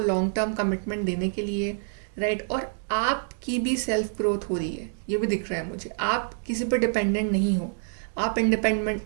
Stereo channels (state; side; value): silent; left; digital silence